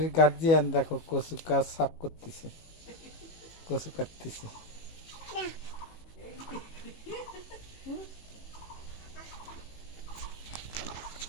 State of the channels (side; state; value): right; late; 18 ms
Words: গার্জিয়ান দেখো কচু গাছ সাফ করতেছে, কচু কাটতেছে।